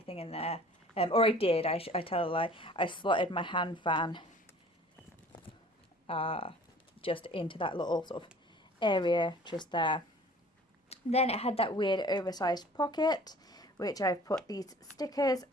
in there. Or I did, I tell a lie, I slotted my hand fan just into that little sort of area just there. Then it had that weird oversized pocket, which I've put these stickers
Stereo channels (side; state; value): both; normal; correlation 0.48